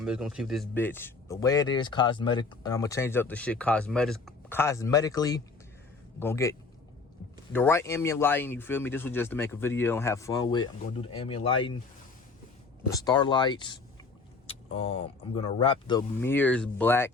just gonna keep this bitch the way it is, cosmetic, and I'm gonna change up the shit cosmetically. Gonna get the right ambient lighting, you feel me? This was just to make a video and have fun with. I'm gonna do the ambient lighting, the starlights. I'm gonna wrap the mirrors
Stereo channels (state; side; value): quieter; right; 4.2 dB